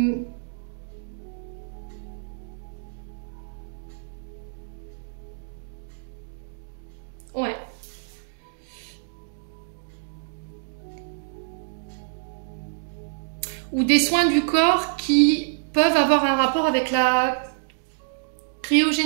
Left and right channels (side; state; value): left; silent; digital silence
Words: Ouais. Ou des soins du corps qui peuvent avoir un rapport avec la